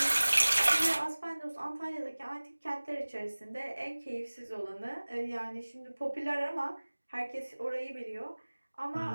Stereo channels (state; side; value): inverted; both; correlation -1.00